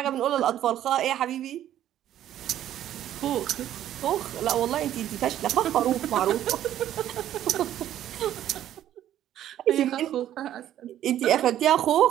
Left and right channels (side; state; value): left; quieter; 11.7 dB